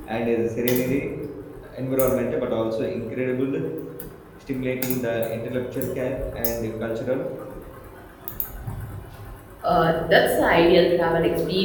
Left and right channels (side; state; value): both; identical; correlation 1.00